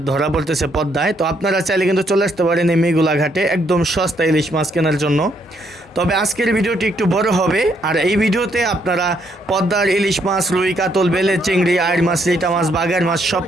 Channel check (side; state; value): both; normal; correlation 0.72